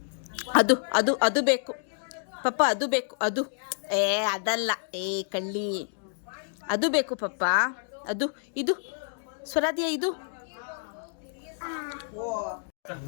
ಅದು ಅದು ಅದು ಬೇಕು ಪಪ್ಪ, ಅದು ಬೇಕು. ಅದು ಅದಲ್ಲ, ಕಳ್ಳಿ. ಅದು ಬೇಕು ಪಪ್ಪ, ಅದು. ಇದು ಸ್ವರಾಧ್ಯ, ಇದು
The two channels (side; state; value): right; silent; digital silence